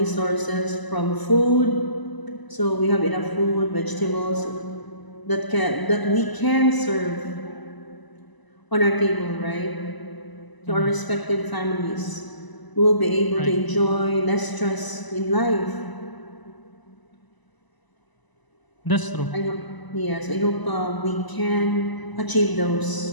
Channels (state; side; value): late; right; 1.0 ms